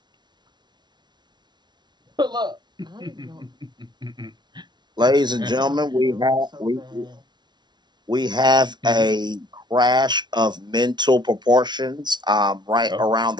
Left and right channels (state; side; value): late; left; 0.21 ms